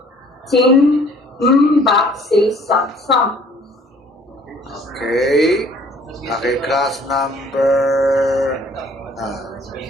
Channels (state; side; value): normal; both; correlation 0.56